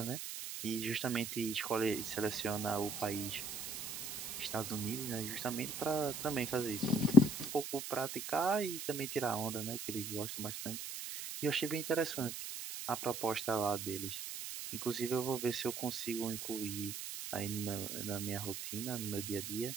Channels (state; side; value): noise; right; hiss, 6 dB below the sound